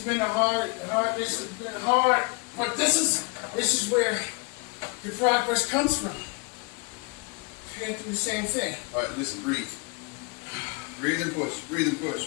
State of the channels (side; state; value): right; quieter; 29.7 dB